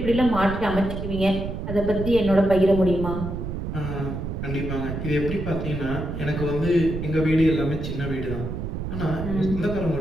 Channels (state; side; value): noise; right; rumble, 5 dB below the sound